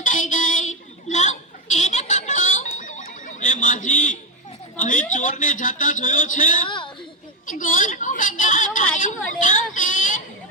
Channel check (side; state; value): both; normal; correlation 0.08